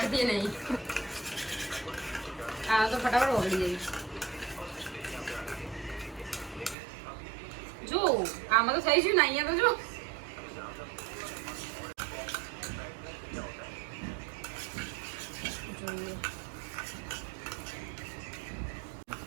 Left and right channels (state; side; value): drops out; left; at 6.8 s